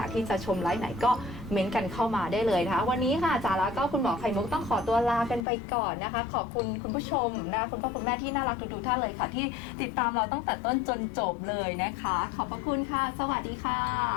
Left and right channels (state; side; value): drops out; right; at 5.5 s